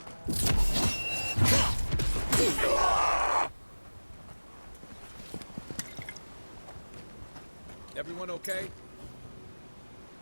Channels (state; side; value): inverted; both; correlation -1.00